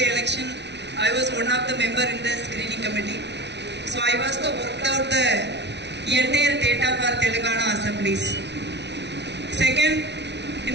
election, I was one of the member in the screening committee. So I was worked out the entire data for Telangana assemblies. Second, in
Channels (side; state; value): left; late; 0.50 ms